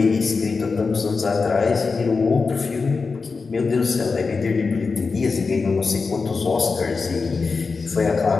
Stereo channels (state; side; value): quieter; right; 4.5 dB